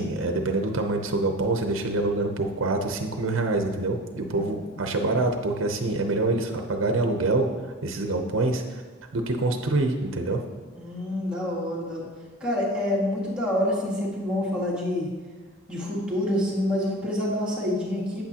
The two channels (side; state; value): both; normal; correlation 0.34